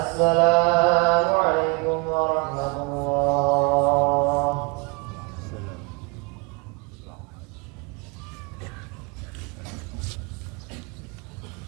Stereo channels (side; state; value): left; quieter; 29.1 dB